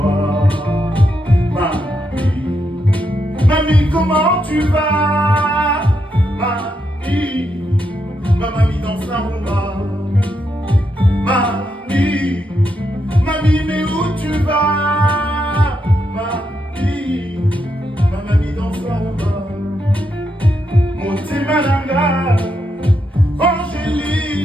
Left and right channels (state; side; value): normal; both; correlation 0.81